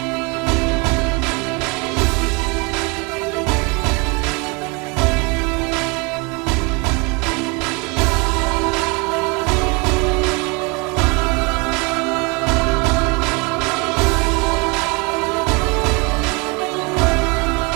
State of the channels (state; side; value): quieter; left; 27.7 dB